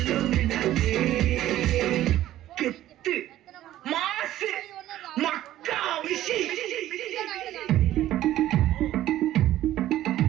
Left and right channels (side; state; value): left; quieter; 13.7 dB